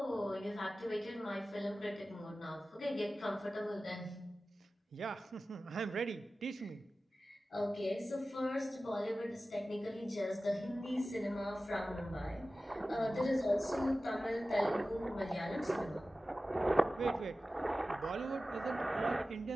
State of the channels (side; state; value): both; normal; correlation 0.95